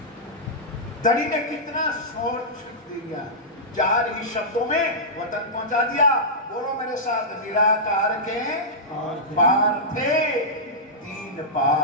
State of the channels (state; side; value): normal; both; correlation -0.13